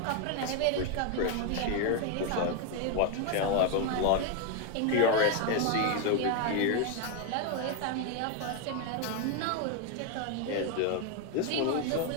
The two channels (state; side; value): different; both; correlation 0.01